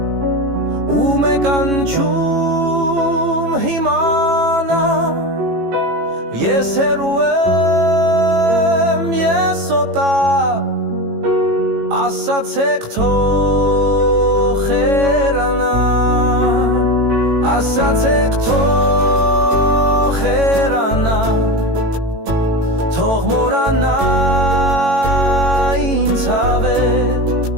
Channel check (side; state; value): left; late; 18 ms